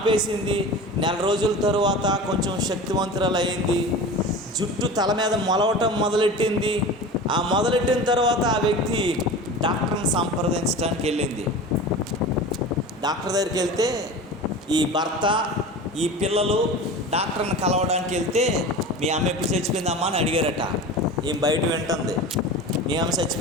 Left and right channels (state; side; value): normal; both; correlation 0.33